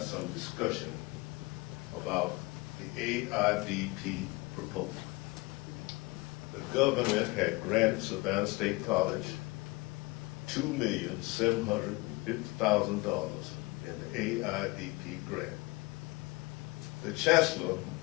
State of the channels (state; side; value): quieter; right; 23.6 dB